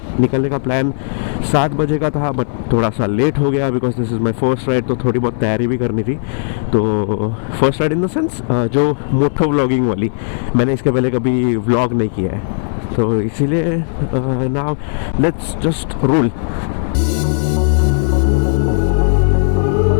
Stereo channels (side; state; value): right; silent; 61 dB below the other